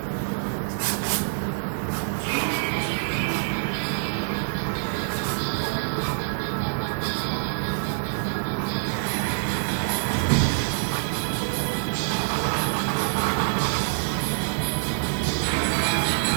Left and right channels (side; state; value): left; silent; digital silence